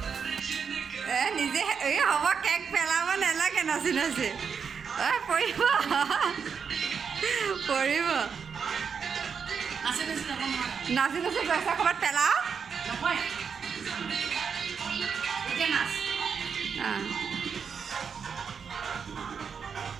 নিজে এই হ'ব কেক পেলাব নালাগে নাচি পৰিব নাচি পইচা ক'ৰবাত পেলাও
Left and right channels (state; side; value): quieter; left; 6.4 dB